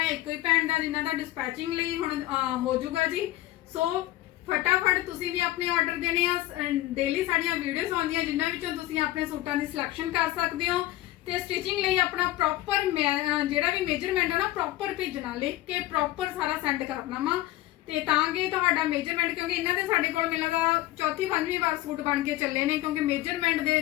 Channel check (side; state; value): right; quieter; 16.0 dB